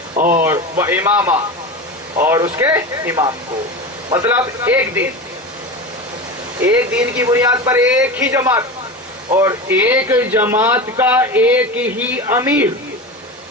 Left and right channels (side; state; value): both; normal; correlation 0.26